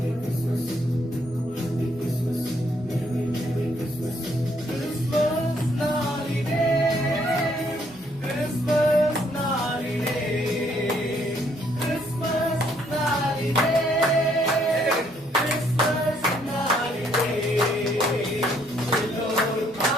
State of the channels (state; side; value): normal; both; correlation 0.68